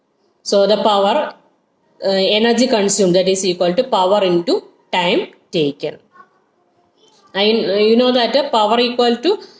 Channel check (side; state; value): both; identical; correlation 1.00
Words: So the power energy consumed, that is equal to power into time taken. And you know that power equal to